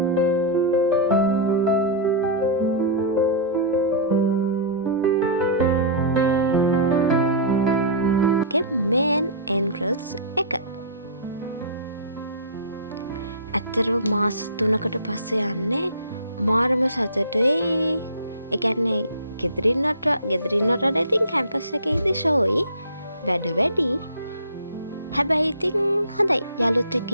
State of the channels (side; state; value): both; inverted; correlation -0.35